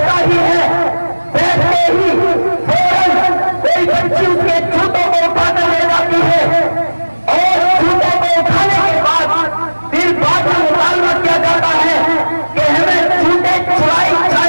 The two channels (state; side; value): inverted; both; correlation -1.00